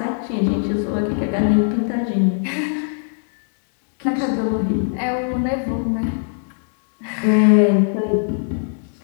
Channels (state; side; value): silent; right; digital silence